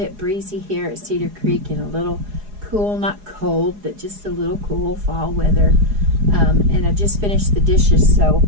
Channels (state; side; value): late; left; 4.8 ms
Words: breezy here at Cedar Creek and a little cool, not cold, but just a little cool fall weather. And I just finished the dishes, so